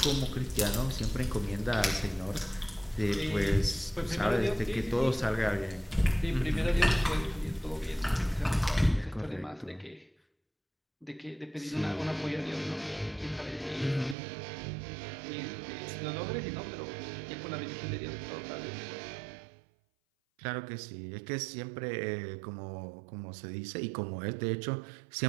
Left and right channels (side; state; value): left; drops out; at 14.2 s